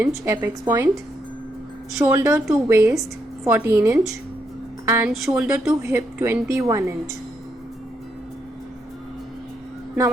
apex point, shoulder to waist 14 inch and shoulder to hip 21 inch. Now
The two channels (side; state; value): both; normal; correlation 0.78